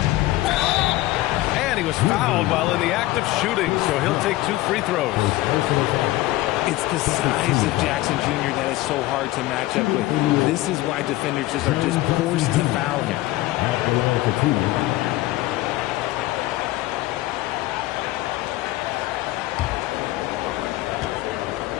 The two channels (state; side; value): quieter; right; 17.6 dB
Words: And he was fouled while in the act of shooting, so he'll take 2 free throws. It's the size of Jackson Jr. that is so hard to match up with. This is why defenders are just forced to foul him.